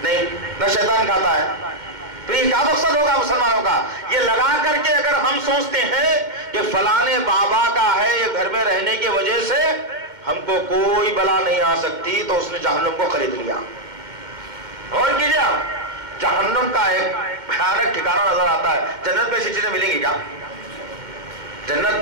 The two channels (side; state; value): left; late; 2.1 ms